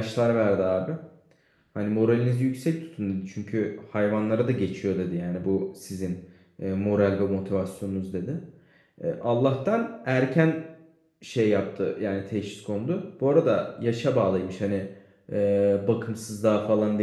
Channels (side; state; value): both; identical; correlation 1.00